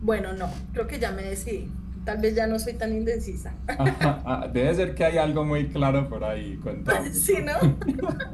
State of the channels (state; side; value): identical; both; correlation 1.00